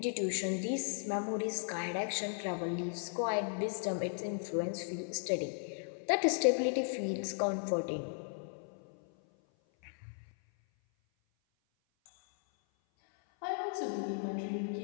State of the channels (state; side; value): silent; right; 54 dB below the other